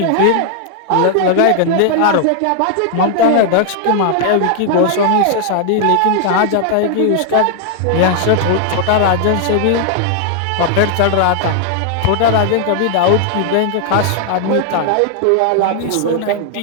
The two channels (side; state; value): both; different; correlation 0.00